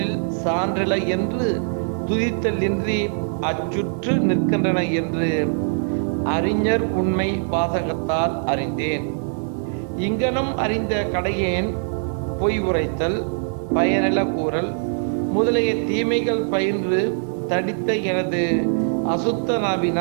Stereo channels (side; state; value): left; silent; 64 dB below the other